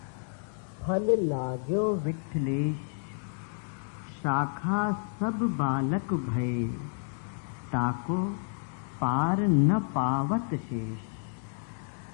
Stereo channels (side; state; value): right; silent; 58 dB below the other